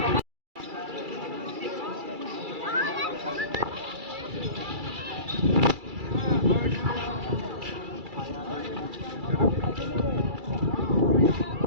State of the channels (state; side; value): late; left; 2.3 ms